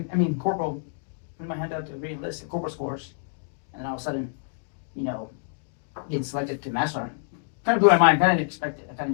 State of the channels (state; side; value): silent; right; digital silence